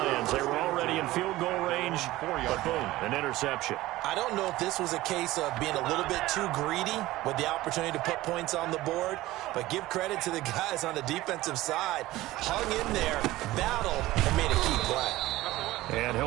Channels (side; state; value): left; quieter; 17.3 dB